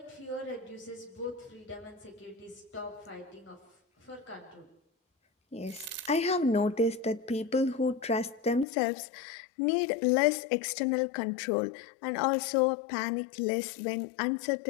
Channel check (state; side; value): drops out; right; at 8.7 s